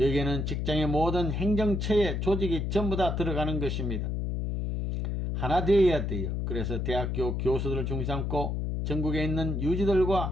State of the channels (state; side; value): noise; left; hum, 1 dB below the sound